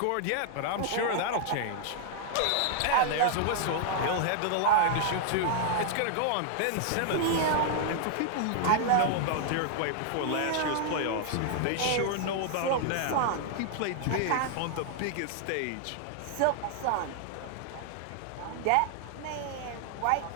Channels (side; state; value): both; different; correlation -0.01